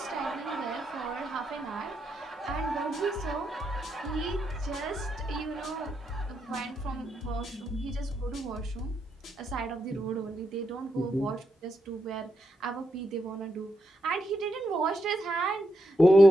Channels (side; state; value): both; normal; correlation 0.82